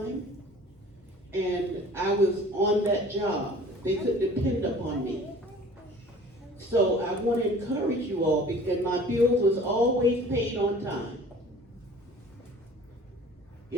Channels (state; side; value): normal; both; correlation 0.47